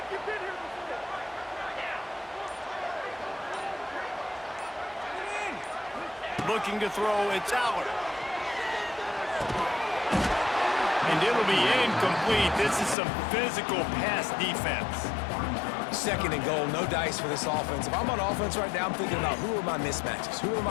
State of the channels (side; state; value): right; drops out; at 13.0 s